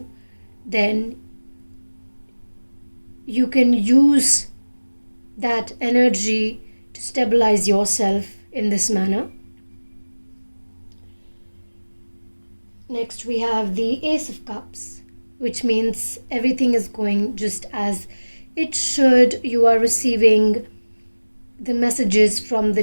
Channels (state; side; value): inverted; both; correlation -1.00